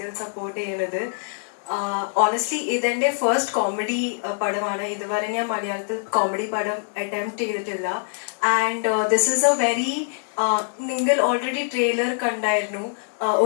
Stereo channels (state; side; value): silent; right; 63 dB below the other